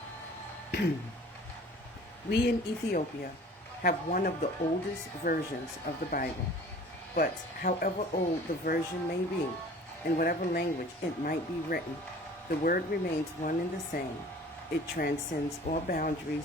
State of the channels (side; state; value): both; normal; correlation 0.47